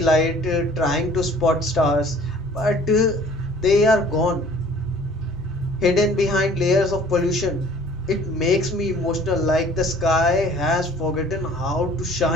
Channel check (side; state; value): both; normal; correlation 0.52